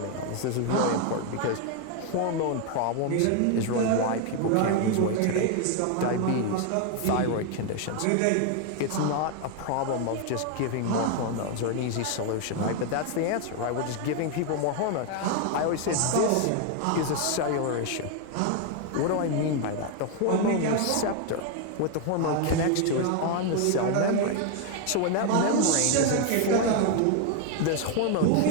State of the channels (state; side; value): different; both; correlation 0.01